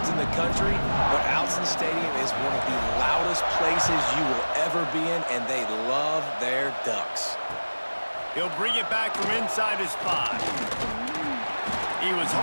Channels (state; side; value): inverted; both; correlation -1.00